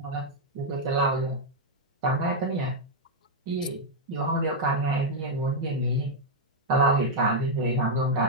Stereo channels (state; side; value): normal; both; correlation -0.02